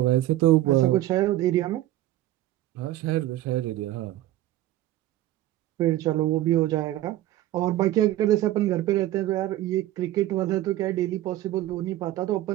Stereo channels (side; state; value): left; quieter; 14.7 dB